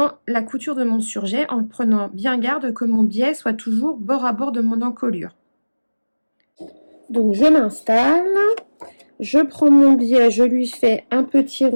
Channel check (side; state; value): both; inverted; correlation -1.00